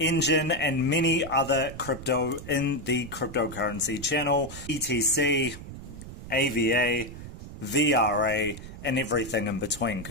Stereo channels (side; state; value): right; noise; rumble, 12 dB below the sound